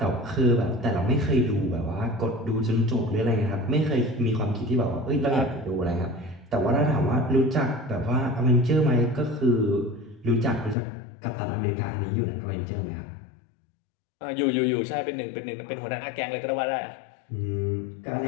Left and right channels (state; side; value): drops out; right; at 10.8 s